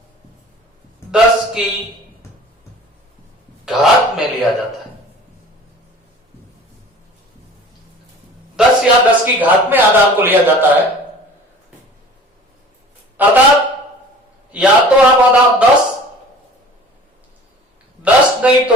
10 की घात में लिया जाता है। 10 या 10 की घात में आधार को लिया जाता है। अर्थात या तो आप आधार 10 नहीं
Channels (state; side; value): normal; both; correlation 0.45